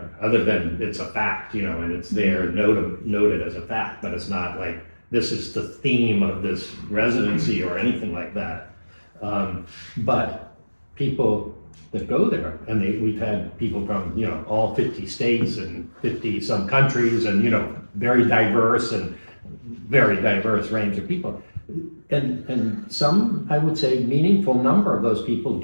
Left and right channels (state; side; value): inverted; both; correlation -1.00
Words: other than it's a fact, and it's there noted as a fact, but it's not like this is the theme of this residency or anything like that. But people that go there, and we've had people from all 50 states and 50 some countries, and very diverse range of people, and some, I would say, meaningful number of those people